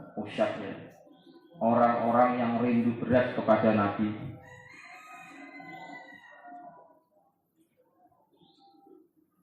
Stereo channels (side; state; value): both; identical; correlation 1.00